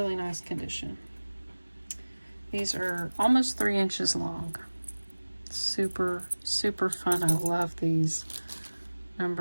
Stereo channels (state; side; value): inverted; both; correlation -1.00